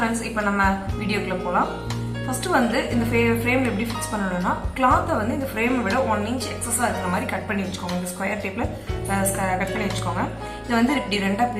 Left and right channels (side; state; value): both; identical; correlation 1.00